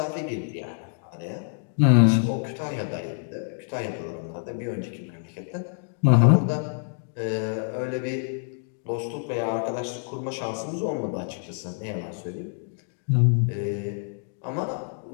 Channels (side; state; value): right; silent; digital silence